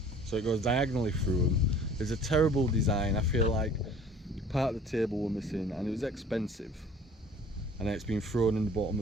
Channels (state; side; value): normal; both; correlation 0.50